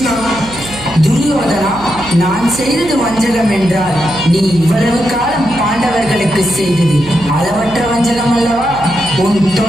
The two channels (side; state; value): right; noise; hum, 17 dB below the sound